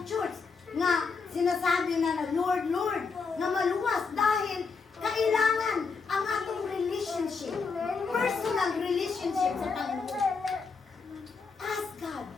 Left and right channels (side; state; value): right; quieter; 4.9 dB